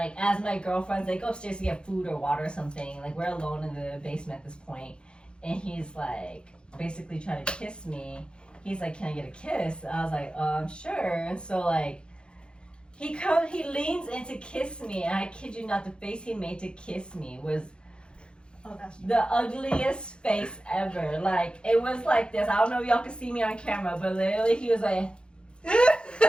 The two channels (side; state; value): right; late; 0.053 ms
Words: as my girlfriends, they go upstairs to get food or water or something. Like we're alone in the basement at this point. And he's like basically trying to kiss me. He's like, can I get a kiss? I was like, sure. And so like he leans in to kiss me, and I kid you not, the face he made to kiss me was the ugliest face ever. Like it was like this. I don't know if y'all can see me on camera, but literally he was like